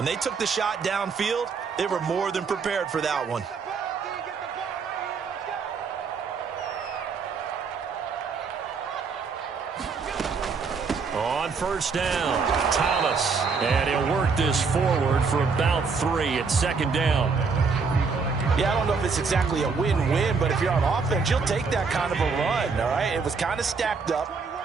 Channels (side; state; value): left; quieter; 5.0 dB